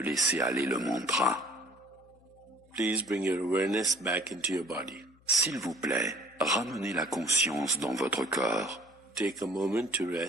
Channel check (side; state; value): left; noise; hum, 29 dB below the sound